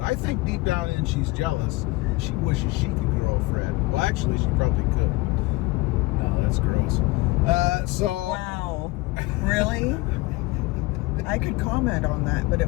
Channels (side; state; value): right; quieter; 21.4 dB